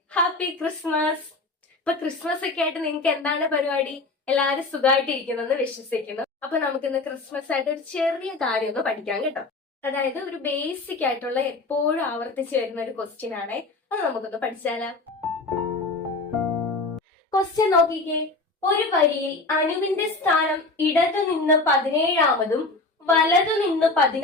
happy Christmas. ഇപ്പൊ ക്രിസ്മസ് ഒക്കെ ആയിട്ട് നിങ്ങൾക്ക് എന്താണ് പരിപാടി? എല്ലാവരും സുഖമായിട്ടിരിക്കുന്നെന്ന് വിശ്വസിക്കുന്നു. അപ്പൊ നമുക്കിന്ന് ക്രിസ്മസ് ആയിട്ട് ഒരു ചെറിയ കാര്യം ഒന്ന് പഠിക്കാം കേട്ടോ. അതായത് ഒരു ബേസിക് ആയിട്ടുള്ള എപ്പോഴും ആവർത്തിച്ചു വരുന്ന ഒരു ക്വസ്റ്റ്യൻ ആണേ. അത് നമുക്കൊന്ന് പഠിച്ചാലോ? ക്വസ്റ്റ്യൻ നോക്കിക്കേ. ഒരു വരിയിൽ അനുവിന്റെ സ്ഥാനം ഇടതു നിന്ന് 17-ാമതും വലതു നിന്ന്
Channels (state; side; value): quieter; right; 3.4 dB